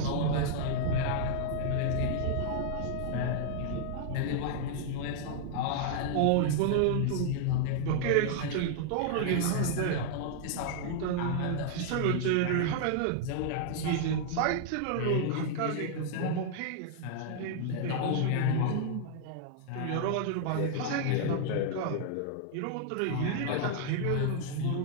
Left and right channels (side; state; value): both; different; correlation -0.01